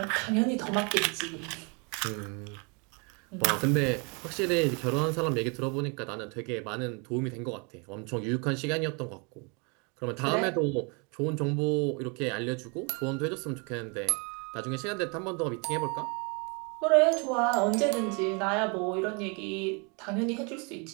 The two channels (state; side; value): quieter; left; 32.9 dB